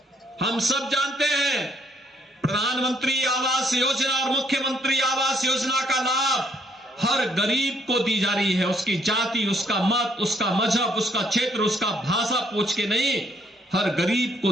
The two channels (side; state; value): both; normal; correlation 0.69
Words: हम सब जानते हैं प्रधानमंत्री आवास योजना और मुख्यमंत्री आवास योजना का लाभ हर गरीब को दी जा रही है। उसकी जाति, उसका मत, उसका मजहब, उसका क्षेत्र, उसका भाषा पूछ के नहीं, हर गरीब को